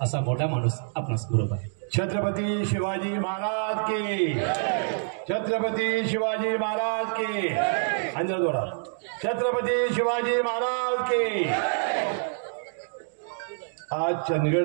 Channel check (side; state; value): left; silent; digital silence